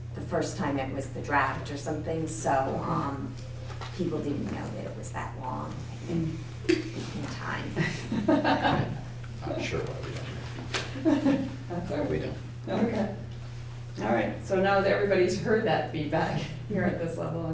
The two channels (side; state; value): both; identical; correlation 1.00